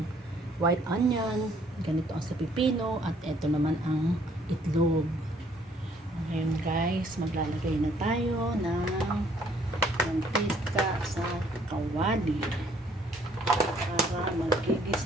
white onion. Ganito ang sa pipino. At eto naman ang itlog. Ngayon guys, maglalagay na tayo ng mantika sa kawali. Para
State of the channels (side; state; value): both; normal; correlation 0.63